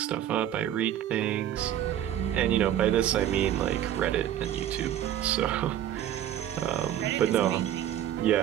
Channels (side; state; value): left; quieter; 11.2 dB